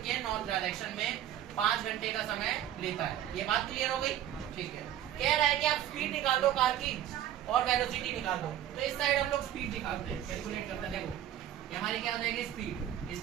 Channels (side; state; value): left; quieter; 11.5 dB